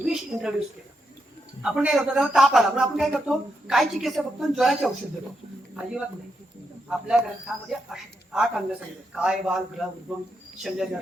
इंट्रोड्यूस केलं. आपण काय करतो, त्याला ताप आला म्हणून आपण काय करतो, काय चिकित्सा फक्त ज्वराचे औषध देतो? अजिबात नाही. आपल्या ग्रंथामध्ये 8 अंग सांगितले, काय, बाल, ग्रह, उद्गम, शल्य,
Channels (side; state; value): both; normal; correlation 0.82